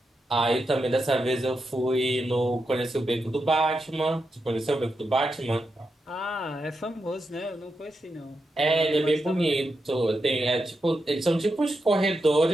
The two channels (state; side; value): normal; both; correlation 0.86